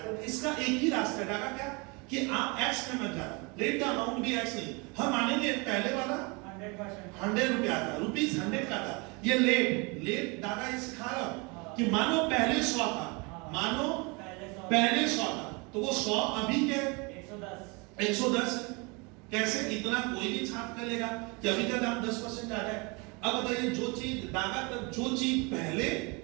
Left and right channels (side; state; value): left; quieter; 29.2 dB